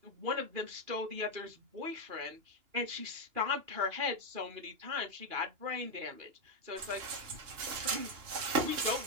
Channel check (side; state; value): left; late; 2.8 ms